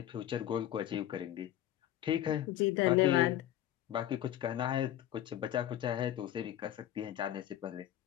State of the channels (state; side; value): quieter; right; 12.3 dB